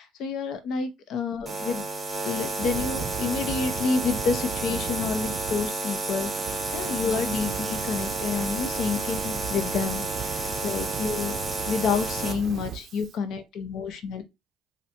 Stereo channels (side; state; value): both; normal; correlation 0.69